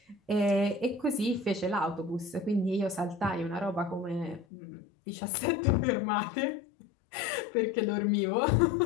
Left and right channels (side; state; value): right; drops out; at 4.5 s